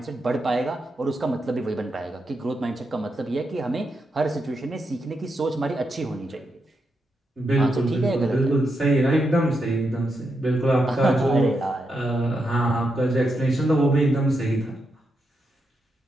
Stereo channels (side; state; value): both; normal; correlation 0.84